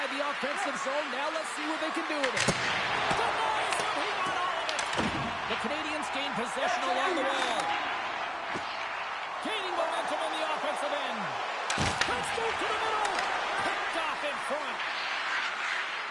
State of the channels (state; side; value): identical; both; correlation 1.00